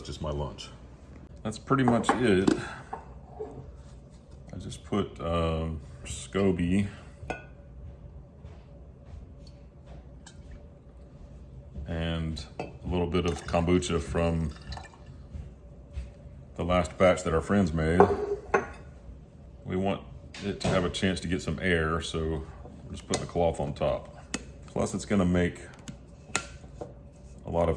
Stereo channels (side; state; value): both; identical; correlation 1.00